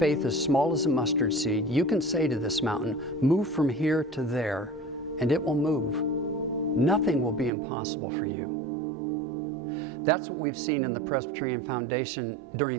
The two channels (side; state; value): left; drops out; at 7.5 s